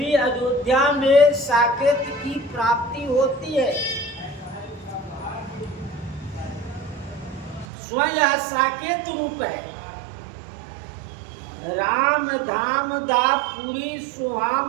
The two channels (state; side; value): drops out; left; at 7.7 s